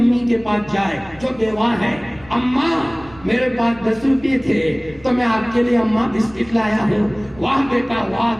کے پاس جائے جو بیوہ ہے، اماں میرے پاس 10 روپے تھے تو میں آپ کے لیے اماں بسکٹ لایا ہوں. واہ بیٹا واہ،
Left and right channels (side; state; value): right; noise; rumble, 23 dB below the sound